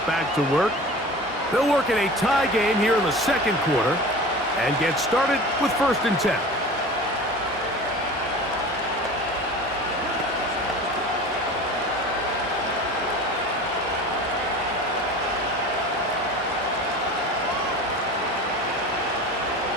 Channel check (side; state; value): both; normal; correlation 0.37